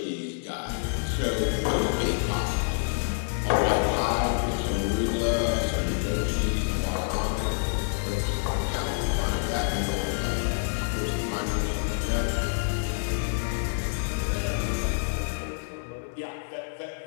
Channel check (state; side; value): silent; right; digital silence